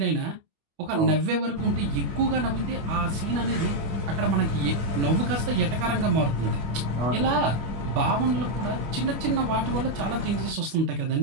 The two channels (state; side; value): late; left; 25 ms